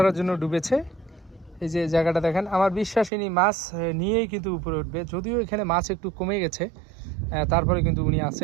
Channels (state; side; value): drops out; left; at 3.1 s